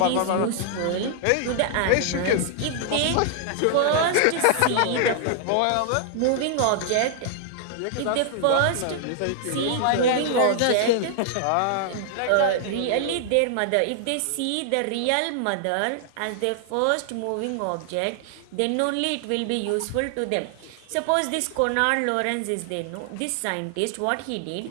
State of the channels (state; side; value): different; both; correlation 0.00